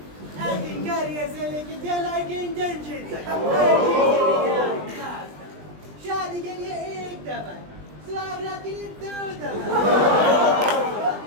एक्टिंग करियर से लेके टेलर के इंटर्नशिप तक, हर चीज़ के लिए आपके पास था। शादी के लिए एक दफा, स्वागत के लिए 2 दफा,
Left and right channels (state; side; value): late; left; 20 ms